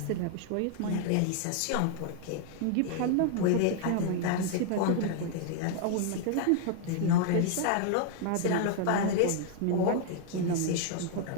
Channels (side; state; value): both; different; correlation 0.00